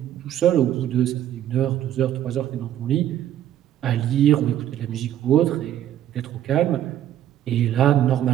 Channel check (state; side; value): quieter; left; 11.4 dB